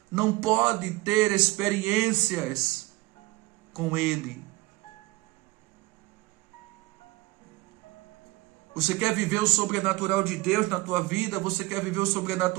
não pode ter experiências com Ele. Você quer viver o sobrenatural de Deus na tua vida? Você quer viver o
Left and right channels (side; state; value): left; quieter; 21.3 dB